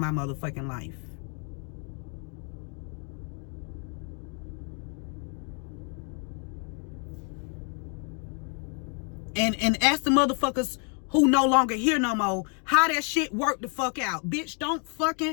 motherfucking life. And ask the motherfuckers who no longer here no more how that shit worked the fuck out. Bitch, don't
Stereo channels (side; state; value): right; quieter; 39.5 dB